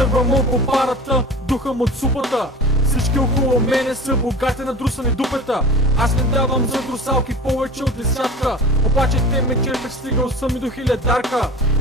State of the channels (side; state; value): both; normal; correlation 0.36